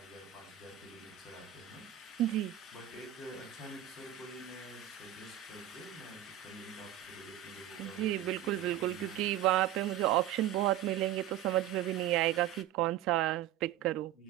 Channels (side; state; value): left; quieter; 12.5 dB